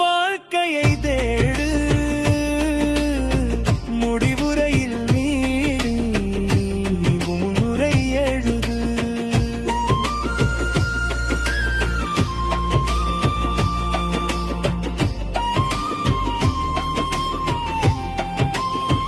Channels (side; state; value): both; identical; correlation 1.00